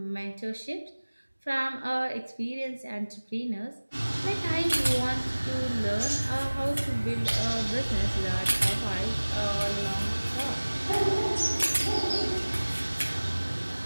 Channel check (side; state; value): both; inverted; correlation -1.00